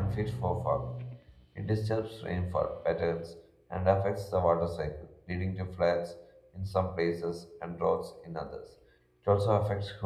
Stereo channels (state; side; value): identical; both; correlation 1.00